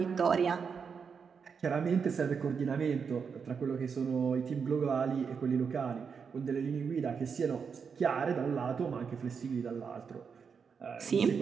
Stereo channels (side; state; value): left; quieter; 6.1 dB